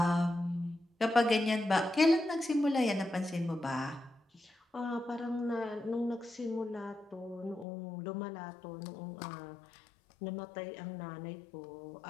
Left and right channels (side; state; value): right; drops out; at 7.7 s